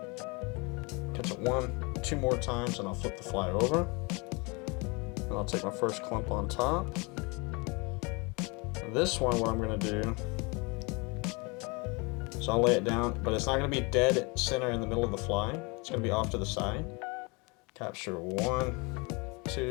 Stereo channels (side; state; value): right; quieter; 29.0 dB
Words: Catch it 1, 2 more times and I'll flip the fly over. And I'll take my first clump on top. This one, what I'm gonna do, so I'll lay it down, but it's not gonna be dead center in the middle of the fly. It's gonna be off to the side. Capture 1,